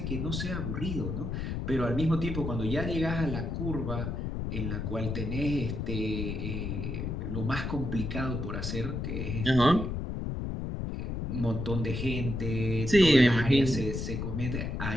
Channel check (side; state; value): left; noise; rumble, 3 dB below the sound